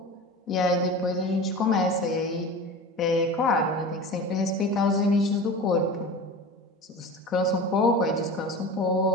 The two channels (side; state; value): both; normal; correlation 0.33